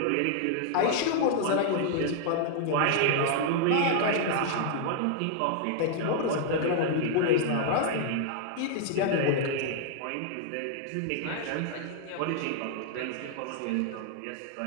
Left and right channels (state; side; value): different; both; correlation -0.01